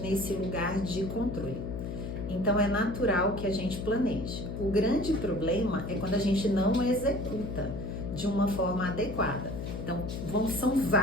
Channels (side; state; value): left; noise; hum, 6 dB below the sound